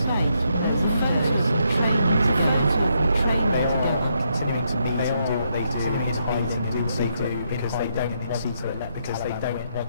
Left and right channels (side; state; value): both; inverted; correlation -0.77